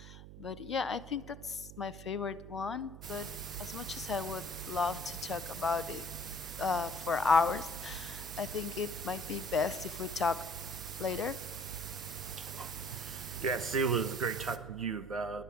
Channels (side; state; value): right; noise; hum, 14 dB below the sound